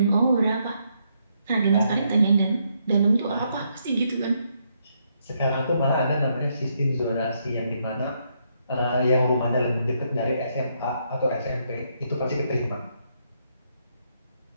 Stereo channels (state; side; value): inverted; both; correlation -0.75